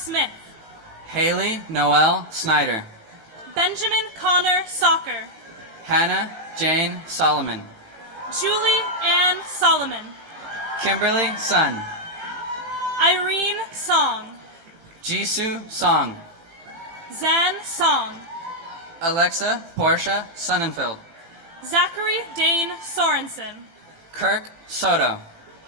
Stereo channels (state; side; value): late; left; 18 ms